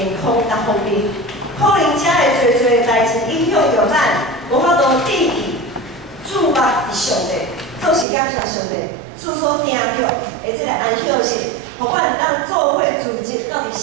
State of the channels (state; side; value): drops out; left; at 8.1 s